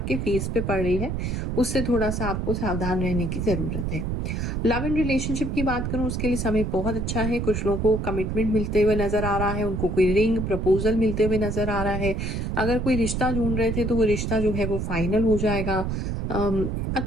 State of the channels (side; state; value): right; noise; rumble, 2 dB below the sound